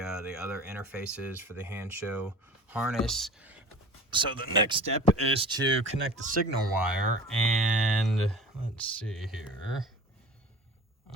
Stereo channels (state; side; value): normal; both; correlation 0.40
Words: other interface is for the Hansshow harness. So the next step is to connect the signal wire, and let's see here.